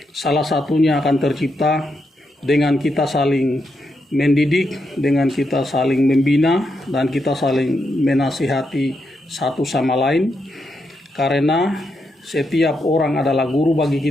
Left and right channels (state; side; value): normal; both; correlation 0.82